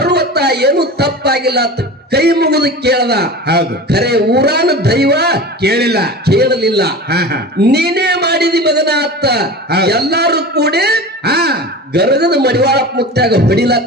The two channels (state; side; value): normal; both; correlation 0.32